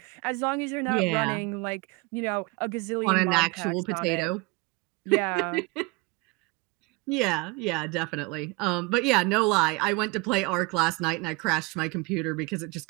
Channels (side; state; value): left; quieter; 25.2 dB